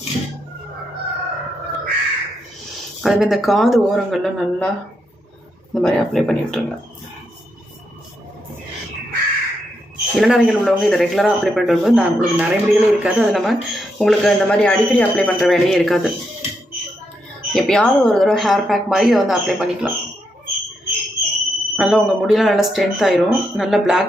அதுமாதிரி இந்த காது ஓரங்களில் நல்லா இந்த மாதிரி அப்ளை பண்ணி விட்டுருங்க. இளநரைகள் உள்ளவங்க இதை ரெகுலராக அப்ளை பண்ணிட்டு வரும்போது நான் உங்களுக்கு நிறைய முடிகளே இருக்காது. அது இல்லாமல் உங்களுக்கு இந்த மாதிரி அடிக்கடி அப்ளை பண்ணுற வேலையே இருக்காது. எப்பயாவது ஒரு தடவை ஹேர் பேக் மாதிரி இதை வந்து அப்ளை பண்ணிக்கலாம். நல்லா உங்கள் முடியெலாம் நல்லா ஸ்ட்ரென்த் ஆயிரும், நல்லா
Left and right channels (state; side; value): normal; both; correlation 0.81